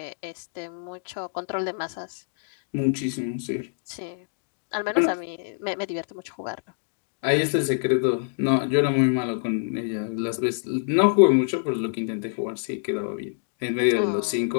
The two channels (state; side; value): silent; right; digital silence